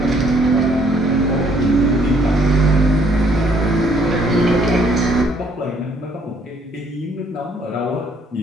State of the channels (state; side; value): normal; both; correlation 0.65